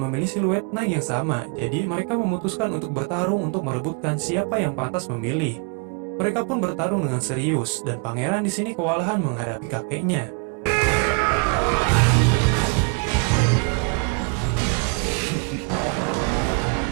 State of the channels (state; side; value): quieter; left; 34.3 dB